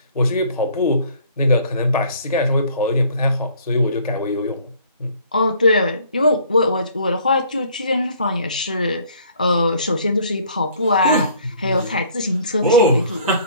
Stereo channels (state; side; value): inverted; both; correlation -0.56